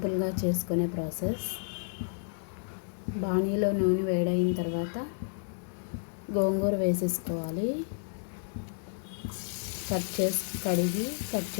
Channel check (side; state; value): right; silent; digital silence